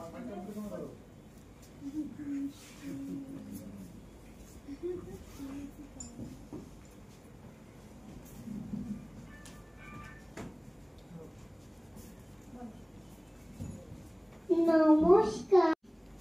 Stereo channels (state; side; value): identical; both; correlation 1.00